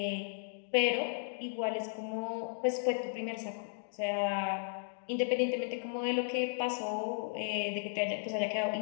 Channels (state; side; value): silent; right; digital silence